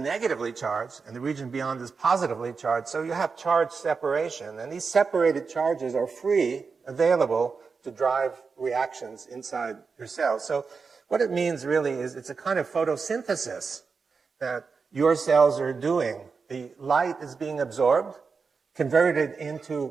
charged, and the region beyond is positively charged, so you have charge separation, and these separated charges are free, available to drive reactions inside your cells. So what it means really is it's a kind of photosynthesis that your cells are doing. The light is being absorbed, converted into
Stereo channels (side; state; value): left; quieter; 5.1 dB